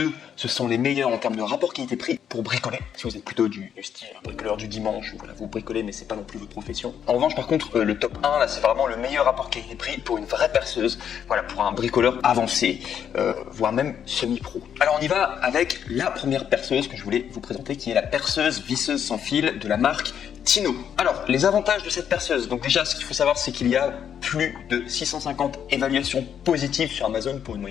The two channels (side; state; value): right; quieter; 8.6 dB